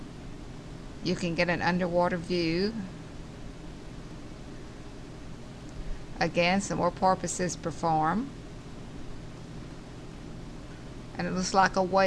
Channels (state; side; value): identical; both; correlation 1.00